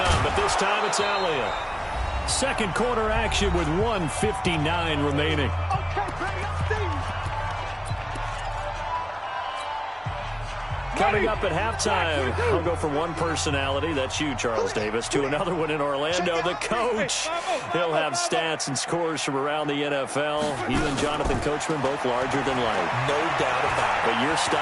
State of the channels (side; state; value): both; identical; correlation 1.00